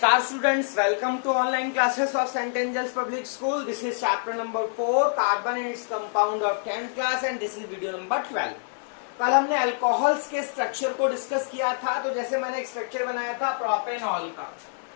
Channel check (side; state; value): right; silent; 58 dB below the other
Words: students, welcome to online classes of St. Angels Public School. This is chapter number 4, carbon and its compound of 10th class and this is video number 12. कल हमने alcohols के structure को discuss किया था, तो जैसे मैंने एक स्ट्रक्चर बनाया था प्रोपेनॉल का,